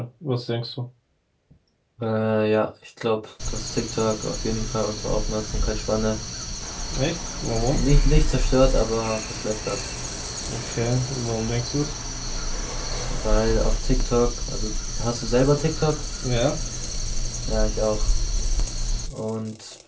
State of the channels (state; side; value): identical; both; correlation 1.00